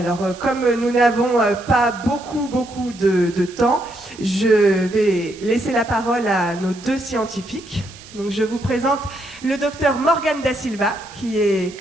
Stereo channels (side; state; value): right; noise; hiss, 20 dB below the sound